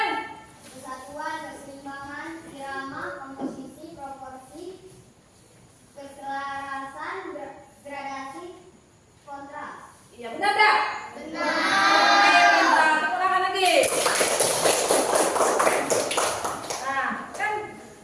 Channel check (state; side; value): identical; both; correlation 1.00